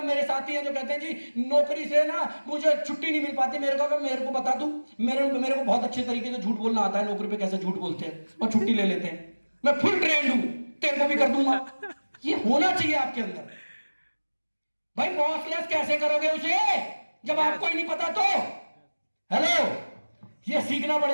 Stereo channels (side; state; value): both; inverted; correlation -1.00